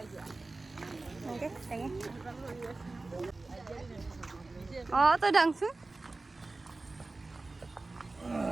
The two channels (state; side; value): quieter; left; 3.3 dB